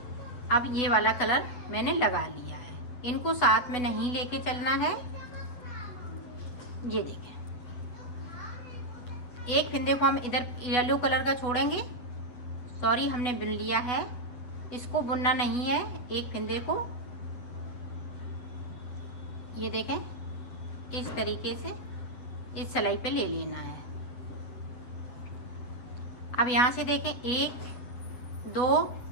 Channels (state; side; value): late; right; 8.1 ms